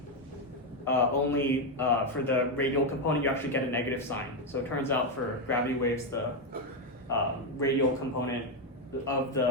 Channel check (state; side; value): normal; both; correlation 0.05